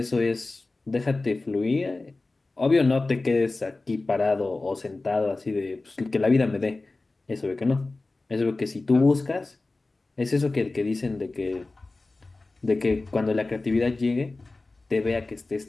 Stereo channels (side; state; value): right; quieter; 3.3 dB